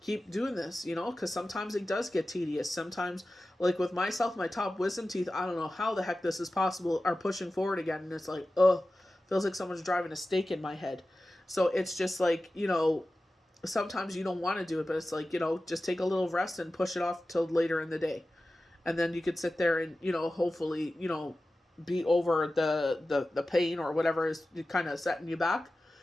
doing this, because sometimes it does get tedious. Sometimes, like with myself, my top wisdom teeth, I don't know how the heck this is possible, are pushing forward again. And it's like, feels like someone's driving a stake in my head. So it's just like, sometimes you don't want to do it, but it's like, just take a little rest and push it off till later in the day. And then you could sit there and, hopefully, be over the pain or whatever is kind of setting you back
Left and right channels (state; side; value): normal; both; correlation 0.95